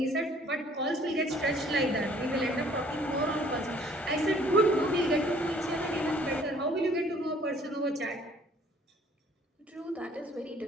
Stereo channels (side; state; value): both; normal; correlation 0.57